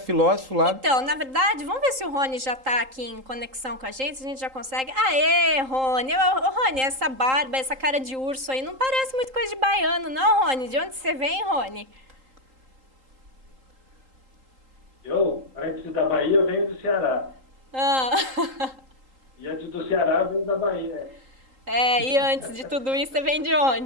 lá. Então, na verdade, vamos ver se o Rony já está aqui em conexão com a gente já consegue. Aê, Rony! Rony, essa barba, essa cara de urso aí, não parece muito coisa de baiano, não, Rony? De onde você vem, Rony? Antes da Bahia, eu venho do Ceará. E antes do Ceará, eu venho da Bahia. E antes de tudo isso, você vem de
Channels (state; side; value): late; left; 3.8 ms